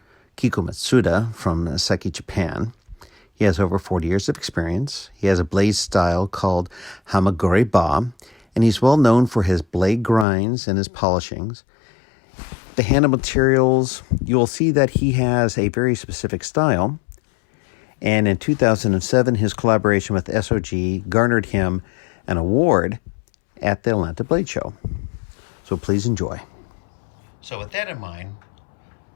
Kiku Matsuda from Seki Japan. He has over 40 years of experience. He has a blade style called kikuhamaguri-ba, and he's well known for his blade grinds and his polishings. The handle materials, you'll see that he has a very specific style. And in 2007, his collaboration with SOG garnered him an award at the Atlanta Blade Show. So please enjoy. So with that in mind,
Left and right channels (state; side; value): drops out; right; at 10.2 s